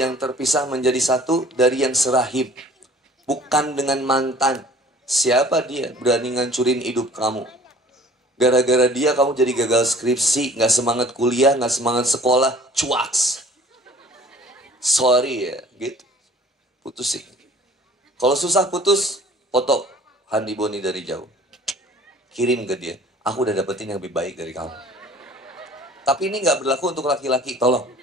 terpisah menjadi satu dari yang serahib. Bukan dengan mantan. Siapa dia berani ngancurin hidup kamu? Gara-gara dia kamu jadi gagal skripsi, gak semangat kuliah, gak semangat sekolah, cuaks. Sorry ya, gitu. Putusin. Kalau susah putus, foto Handi Boni dari jauh. Kirim ke dia. Aku udah dapetin yang lebih baik dari kamu. Tapi ini gak berlaku untuk laki-laki, tolong.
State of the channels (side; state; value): both; normal; correlation 0.50